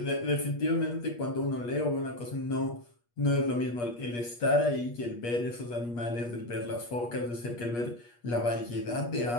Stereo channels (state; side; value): late; right; 8.4 ms